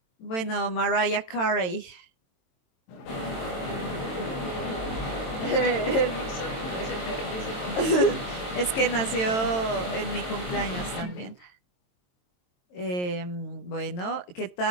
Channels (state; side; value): late; right; 22 ms